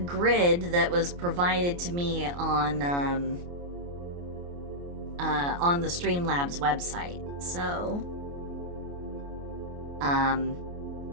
that was provided to me on the Streamlabs website. So,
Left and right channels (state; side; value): late; left; 28 ms